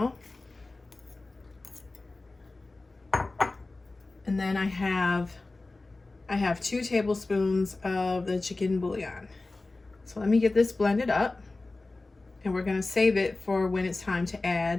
And then I have 2 tablespoons of the chicken bouillon. So let me get this blended up, and we're gonna save it for when it's time to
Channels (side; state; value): right; quieter; 3.3 dB